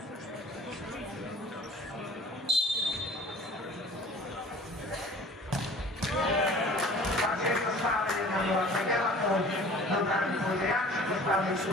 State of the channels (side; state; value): both; normal; correlation 0.46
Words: Takže je to stále 1-0 pre Gemakov, do brány pôjde Jančík, dostávajú